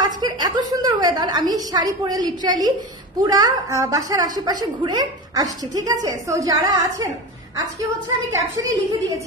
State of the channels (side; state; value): both; normal; correlation 0.25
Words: আজকের এত সুন্দর ওয়েদার, আমি শাড়ি পরে লিটারালি পুরা বাসার আশেপাশে ঘুরে আসছি। ঠিক আছে, সো যারা আছেন, আজকে হচ্ছে আমি ক্যাপশনে লিখে